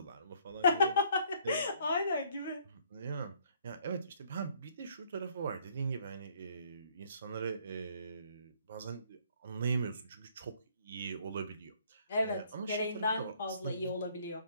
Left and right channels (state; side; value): inverted; both; correlation -0.62